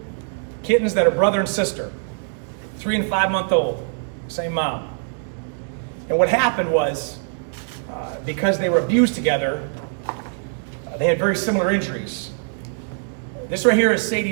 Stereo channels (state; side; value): silent; left; 64 dB below the other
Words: kittens that are brother and sister, 3 and 5-month-old, same mom. And what happened was, because they were abused together, they had very similar injuries. This right here is